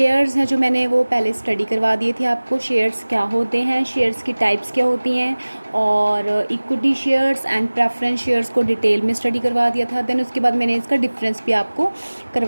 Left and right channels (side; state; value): both; inverted; correlation -1.00